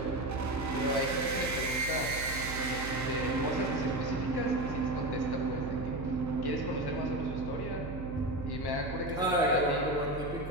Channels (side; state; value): right; noise; hum, 8 dB below the sound